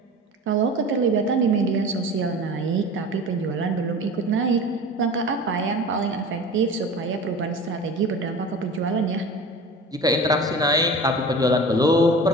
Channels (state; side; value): normal; both; correlation 0.37